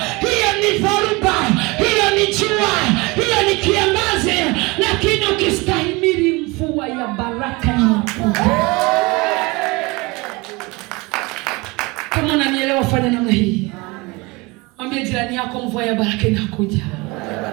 Hiyo ni dharuba. Hiyo ni jua. Hiyo ni kiangazi. Lakini ukistahimili mvua ya baraka inakuja. kufanya namna hii. Mwambie jirani yako, mvua ya baraka inakuja.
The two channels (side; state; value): left; quieter; 24.8 dB